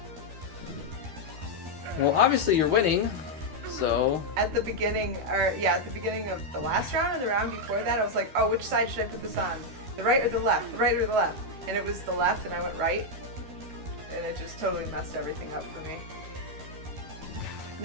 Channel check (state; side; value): late; left; 12 ms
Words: Well, obviously you're winning, so... At the beginning of the last round and the round before that, I was like, oh, which side should I put this on? The right or the left? The right or the left? And it was the left, and I went right. And it just totally messed everything up for me.